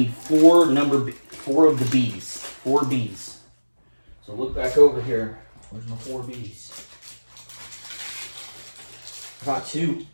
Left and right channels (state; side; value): inverted; both; correlation -1.00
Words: four of the B's. 4 B's. So look back over here. Where's my 4 B's? I got 2.